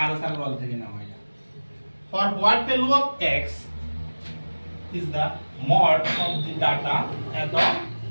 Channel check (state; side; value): inverted; both; correlation -1.00